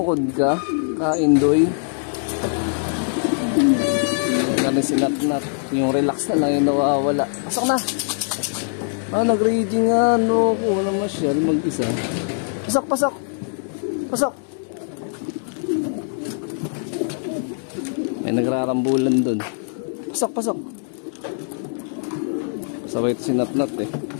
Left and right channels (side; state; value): right; silent; digital silence